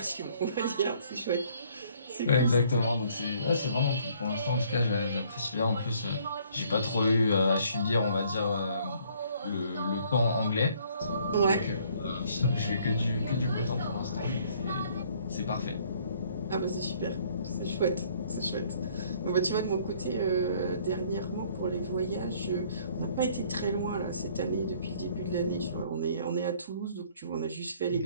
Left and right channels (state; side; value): inverted; both; correlation -0.61